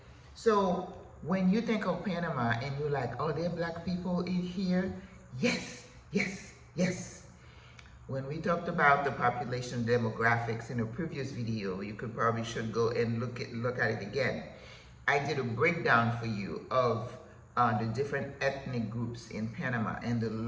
So when you think of Panama and you're like, oh, there are black people in here? Yes, yes, yes. When we talked about the population demographics in a previous video, you could probably should go and look at it again. I did a breakdown for you of the different ethnic groups in Panama, and the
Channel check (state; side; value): identical; both; correlation 1.00